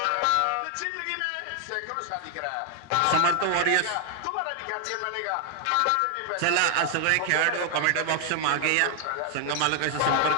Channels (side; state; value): both; different; correlation 0.00